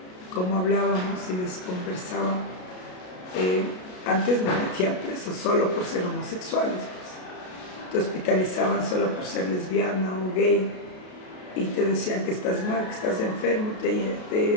cómo hablábamos y les conversaba. Antes nos metían presos solo por ser homosexuales, pues. Te hospitalizaban solo por ser lesbiana o gay y te decían que estás mal, que estás enfermo,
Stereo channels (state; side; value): late; right; 33 ms